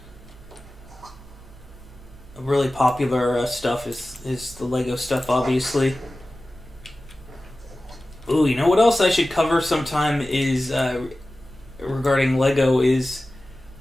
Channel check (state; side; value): normal; both; correlation 0.96